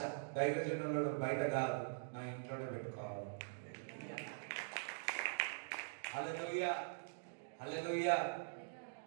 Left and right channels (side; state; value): left; silent; digital silence